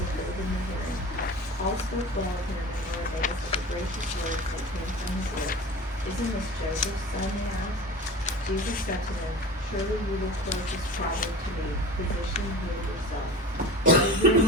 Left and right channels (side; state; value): both; normal; correlation 0.35